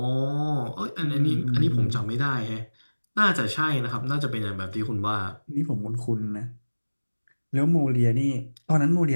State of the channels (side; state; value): both; inverted; correlation -1.00